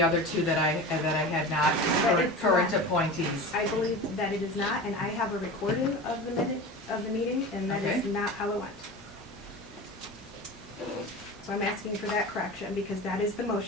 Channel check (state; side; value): normal; both; correlation 0.31